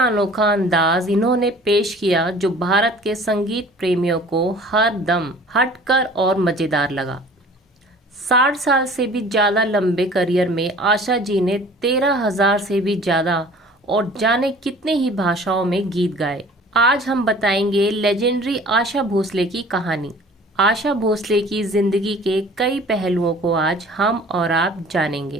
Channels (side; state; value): both; normal; correlation 0.48